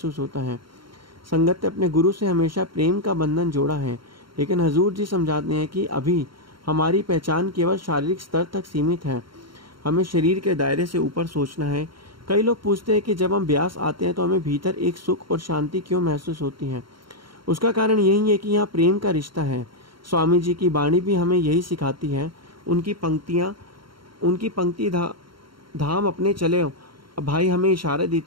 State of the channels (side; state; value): left; late; 0.73 ms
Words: होता है। संगत ने अपने गुरु से हमेशा प्रेम का बंधन जोड़ा है, लेकिन हजूर जी समझाते हैं कि अभी हमारी पहचान केवल शारीरिक स्तर तक सीमित है, हमें शरीर के दायरे से ऊपर सोचना है। कई लोग पूछते हैं कि जब हम ब्यास आते हैं तो हमें भीतर एक सुख और शांति क्यों महसूस होती है? उसका कारण यही है कि यहाँ प्रेम का रिश्ता है। स्वामी जी की वाणी भी हमें यही सिखाती है। उनकी पंक्ति धाम अपने चले भाई हमें इशारा